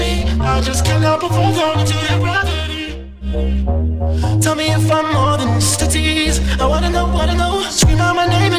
I just can't help but fall down into your gravity. Tell me if I'm more than just a tease. I wanna know, wanna know.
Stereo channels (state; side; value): identical; both; correlation 1.00